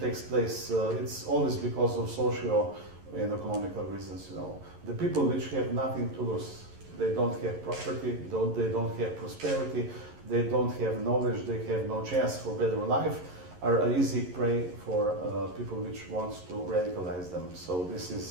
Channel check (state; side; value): late; left; 11 ms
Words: takes place? It's always because of social and economical reasons. You know, the people which have nothing to lose, they don't have property, they don't have prosperity, they don't have knowledge, they have no chance for better life, are an easy prey for people which wants to radicalize them. So this